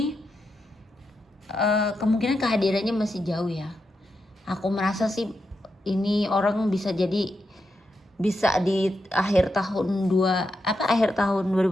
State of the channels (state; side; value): normal; both; correlation 0.85